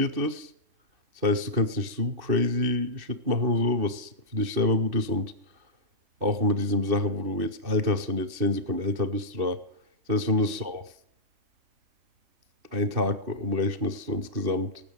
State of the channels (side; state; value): left; late; 2.7 ms